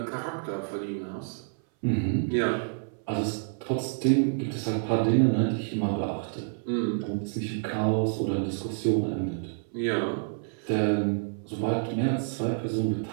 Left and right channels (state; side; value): silent; left; 58 dB below the other